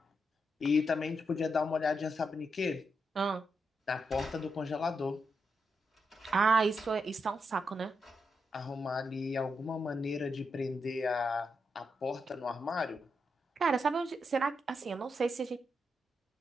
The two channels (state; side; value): normal; both; correlation 0.83